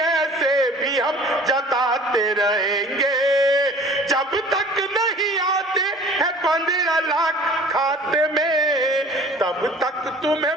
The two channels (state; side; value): normal; both; correlation 0.47